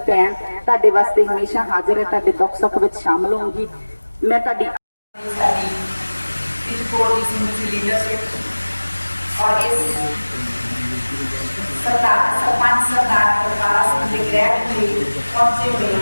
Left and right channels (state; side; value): inverted; both; correlation -1.00